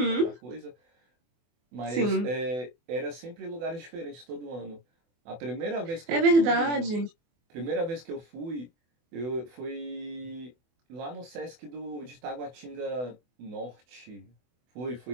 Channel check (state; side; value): late; left; 24 ms